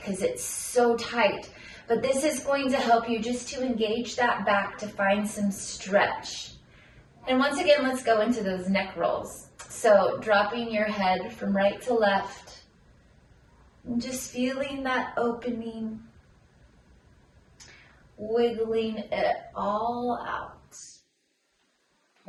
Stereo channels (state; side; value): identical; both; correlation 1.00